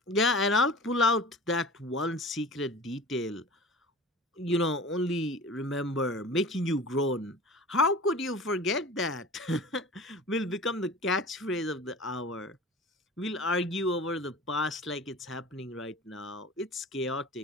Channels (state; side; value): normal; both; correlation 0.38